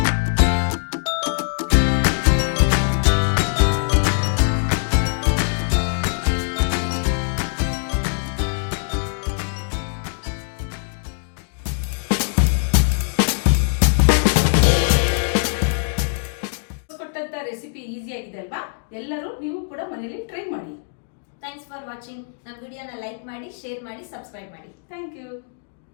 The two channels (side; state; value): right; silent; digital silence